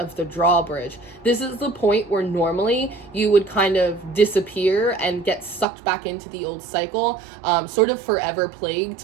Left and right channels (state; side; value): drops out; left; at 5.7 s